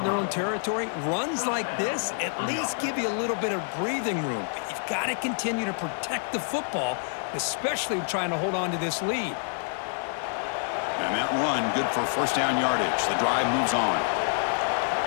their own territory, runs like this at least give you a little bit of breathing room. But you've got to continue to protect the football, especially trying to hold on to this lead. And that run, good for first down yardage. The drive moves on.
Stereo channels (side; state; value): right; silent; digital silence